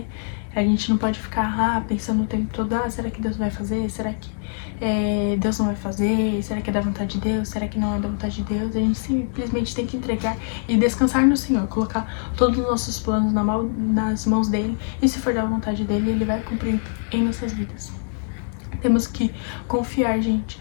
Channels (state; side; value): silent; right; 61 dB below the other